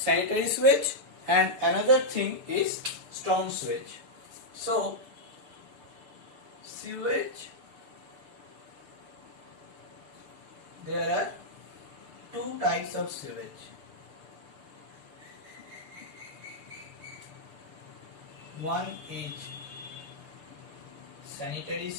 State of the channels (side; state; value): left; late; 6.8 ms